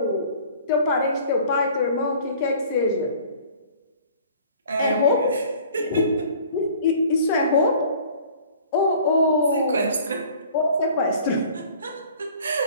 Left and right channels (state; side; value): inverted; both; correlation -0.49